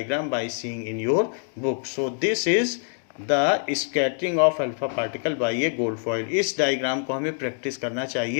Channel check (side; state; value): right; silent; 58 dB below the other